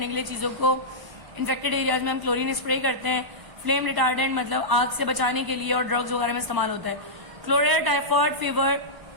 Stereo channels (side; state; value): left; late; 1.0 ms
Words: के लिए चीजों को इन्फेक्टेड एरियाज में हम क्लोरीन स्प्रे करते हैं. फ्लेम रिटार्डेंट मतलब आग से बचाने के लिए और ड्रग्स वगैरह में इस्तेमाल होता है. Cholera, typhoid, fever